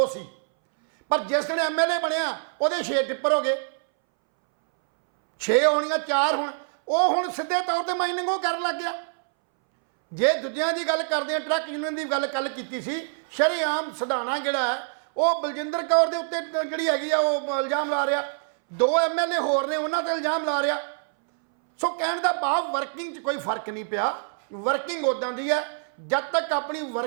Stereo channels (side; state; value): left; silent; 61 dB below the other